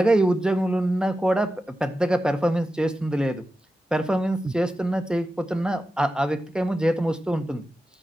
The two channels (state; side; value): normal; both; correlation 0.92